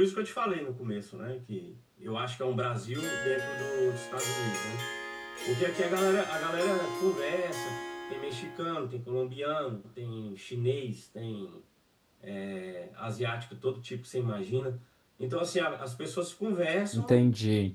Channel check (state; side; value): identical; both; correlation 1.00